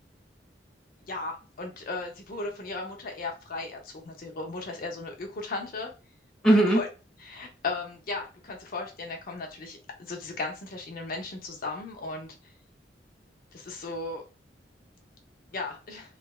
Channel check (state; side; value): normal; both; correlation 0.53